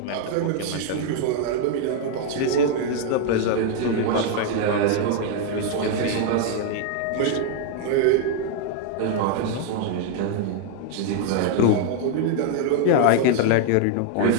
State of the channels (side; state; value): both; different; correlation 0.00